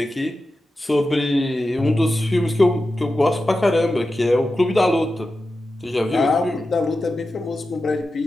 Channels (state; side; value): normal; both; correlation 0.92